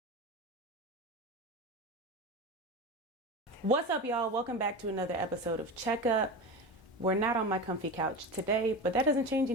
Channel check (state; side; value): normal; both; correlation 0.25